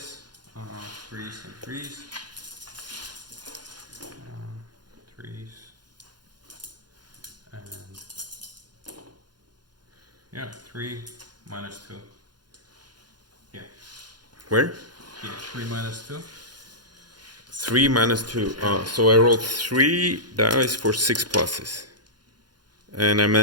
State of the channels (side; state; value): left; late; 0.70 ms